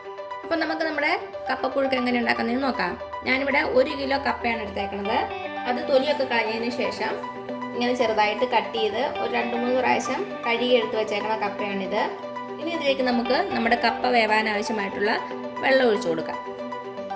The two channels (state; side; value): identical; both; correlation 1.00